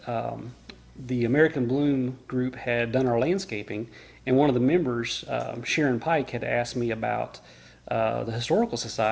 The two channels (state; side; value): identical; both; correlation 1.00